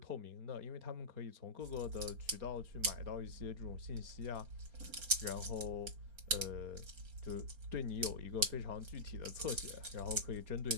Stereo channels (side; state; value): left; late; 4.3 ms